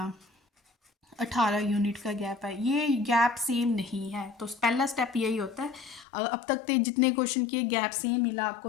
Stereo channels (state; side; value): drops out; right; at 6.1 s